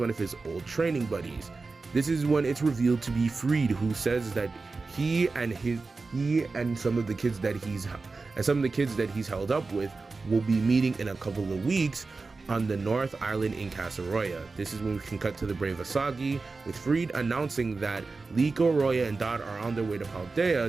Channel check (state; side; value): quieter; left; 3.9 dB